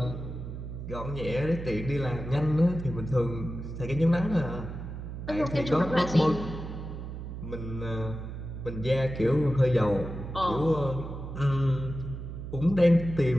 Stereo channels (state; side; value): noise; right; hum, 8 dB below the sound